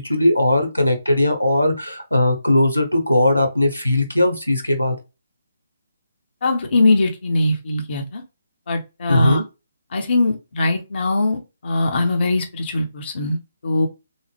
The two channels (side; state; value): both; inverted; correlation -0.86